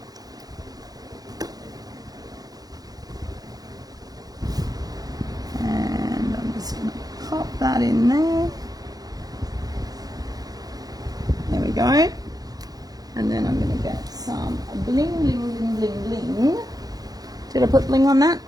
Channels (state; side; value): late; left; 0.18 ms